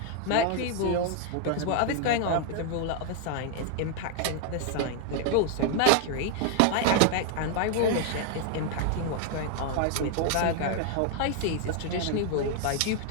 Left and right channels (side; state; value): both; different; correlation 0.00